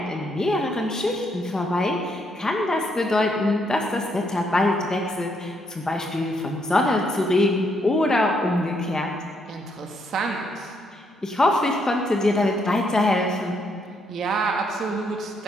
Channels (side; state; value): both; normal; correlation 0.74